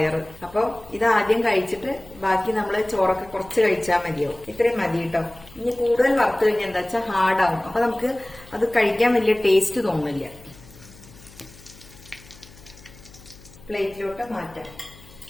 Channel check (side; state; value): left; noise; hum, 22 dB below the sound